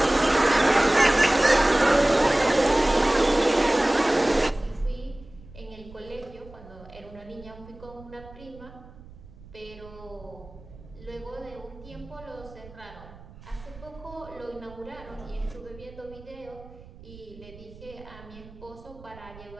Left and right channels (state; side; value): noise; right; rumble, 19 dB below the sound